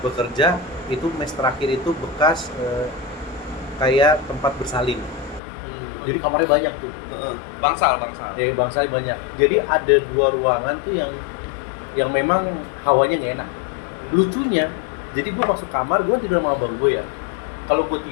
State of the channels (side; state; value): right; drops out; at 5.4 s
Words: bekerja, itu mes terakhir itu bekas kayak tempat bersalin. Jadi kamarnya banyak tuh. Heeh. Bangsal. Dari bangsa banyak. Jadi ada 2 ruangan tuh yang memang hawanya nggak enak. Lucunya, jadi gue masuk kamar, gue tidur sama abang gue ya. Kalau gue